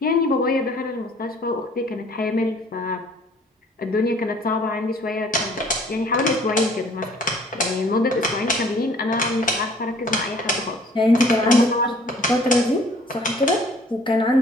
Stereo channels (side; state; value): both; normal; correlation 0.56